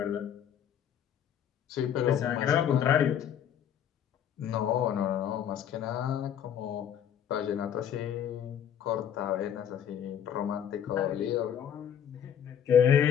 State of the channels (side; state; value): right; quieter; 9.1 dB